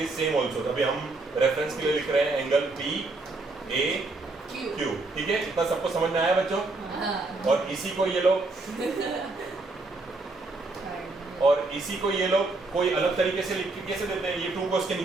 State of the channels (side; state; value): left; quieter; 3.3 dB